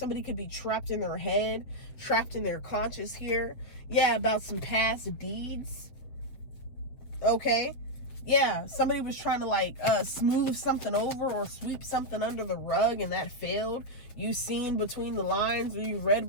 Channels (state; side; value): late; right; 8.0 ms